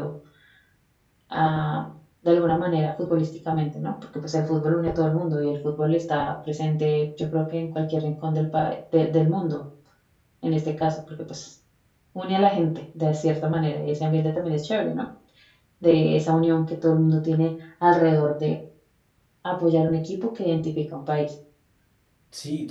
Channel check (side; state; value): both; identical; correlation 1.00